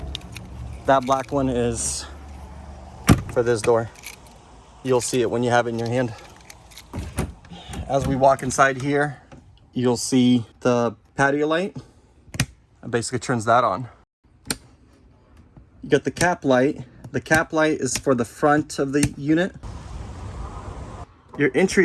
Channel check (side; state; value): both; identical; correlation 1.00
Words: That black one is for this door. You'll see it when you have it in your hand. As we walk inside here, you'll see the patio light. It basically turns that on. You got the cap light. The cap light is for the front of the unit. Your